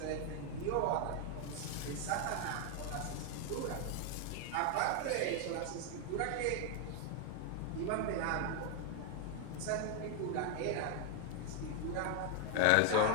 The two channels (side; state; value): both; different; correlation 0.01